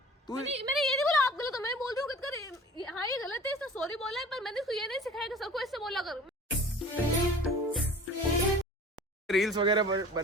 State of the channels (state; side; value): normal; both; correlation 0.44